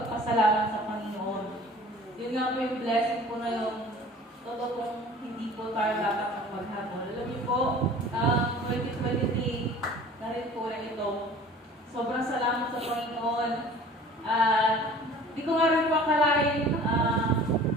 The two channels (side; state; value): both; normal; correlation 0.46